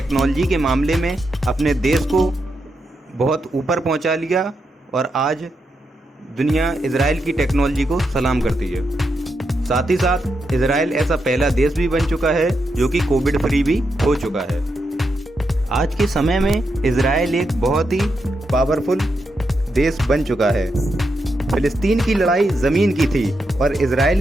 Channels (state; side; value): normal; both; correlation 0.84